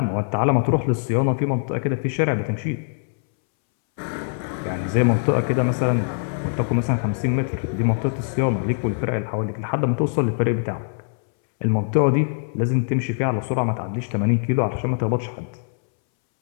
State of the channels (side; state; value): right; silent; 64 dB below the other